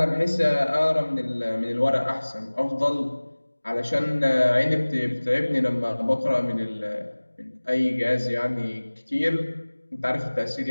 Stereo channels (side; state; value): both; inverted; correlation -1.00